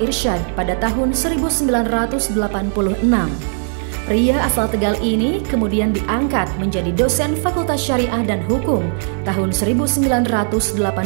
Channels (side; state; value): left; silent; 67 dB below the other